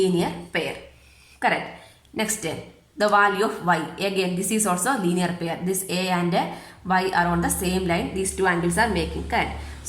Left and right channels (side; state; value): both; identical; correlation 1.00